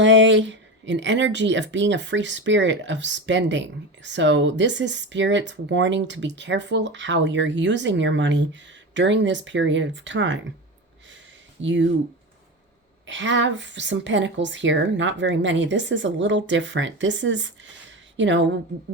an energy of being a free spirit of spending. So this is Spirit's warning to be careful how you're using your money during this period of time. You have some pentacles here, not very many. This is a little different. This is,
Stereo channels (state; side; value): normal; both; correlation 0.24